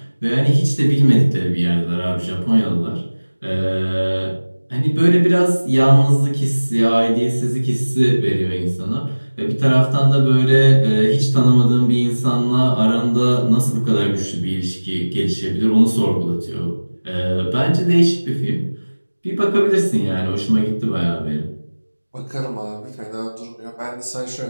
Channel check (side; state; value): both; inverted; correlation -1.00